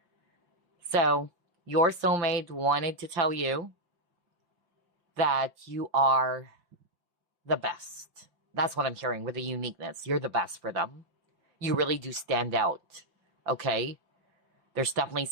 So, your soulmate wanted to tell you that you are the best. That's what I'm hearing with the uniqueness. You're the best for them. You really do stand out, okay? There's definitely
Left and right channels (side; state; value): left; late; 5.8 ms